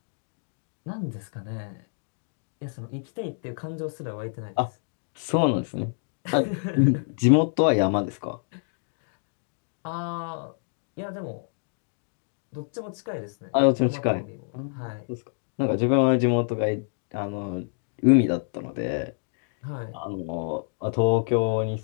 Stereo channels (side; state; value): right; silent; digital silence